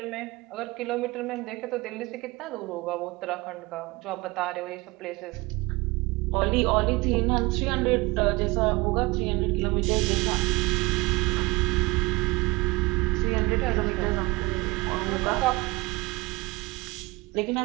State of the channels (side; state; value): left; quieter; 23.3 dB